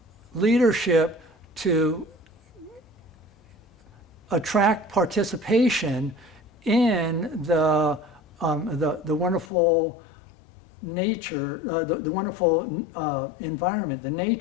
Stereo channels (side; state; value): right; drops out; at 9.5 s